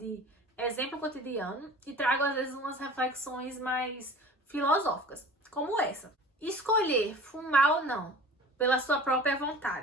exemplo cotidiano, e trago às vezes umas reflexões mais filosóficas, como essa. Escolher fumar ou não, pela sua própria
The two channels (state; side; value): normal; both; correlation 0.41